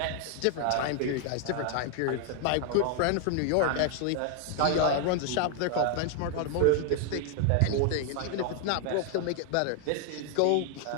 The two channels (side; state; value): both; different; correlation 0.00